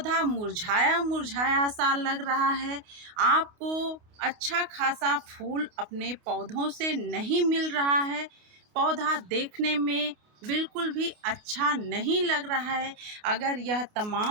मुरझाया मुरझाया सा लग रहा है, आपको अच्छा खासा फूल अपने पौधों से नहीं मिल रहा है, पौधा देखने में बिल्कुल भी अच्छा नहीं लग रहा है। अगर यह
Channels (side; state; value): left; late; 28 ms